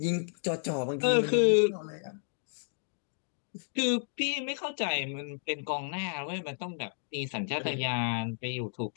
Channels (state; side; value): silent; right; digital silence